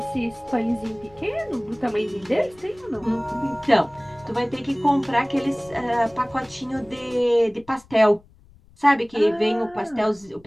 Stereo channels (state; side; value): noise; left; rumble, 27 dB below the sound